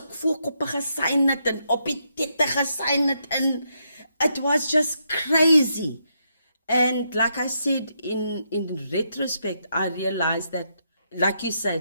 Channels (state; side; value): inverted; both; correlation -0.79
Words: voorkoppe gesign het en op die tette gesign het, and it was just crazy. And like I said, in retrospect, I realized that, like you